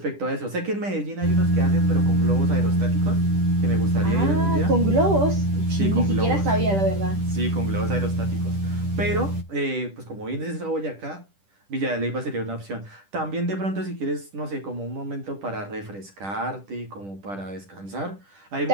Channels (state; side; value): late; left; 10 ms